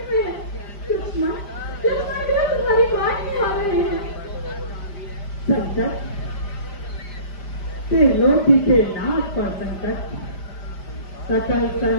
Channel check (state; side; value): late; right; 5.0 ms